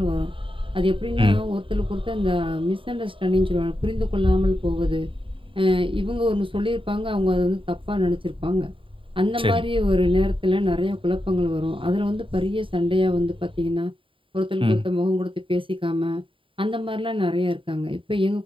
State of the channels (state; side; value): late; left; 0.25 ms